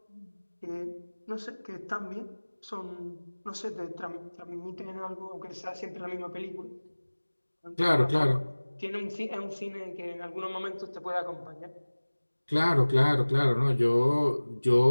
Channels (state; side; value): inverted; both; correlation -1.00